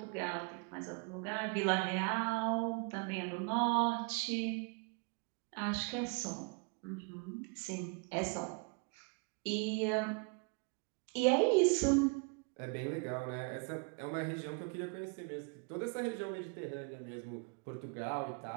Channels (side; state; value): left; quieter; 34.5 dB